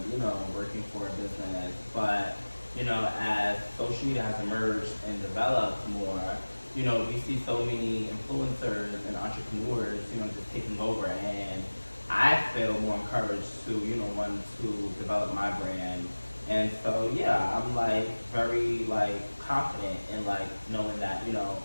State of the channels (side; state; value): both; inverted; correlation -1.00